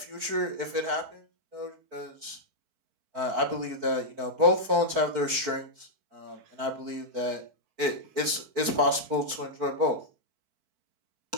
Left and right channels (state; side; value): late; left; 4.5 ms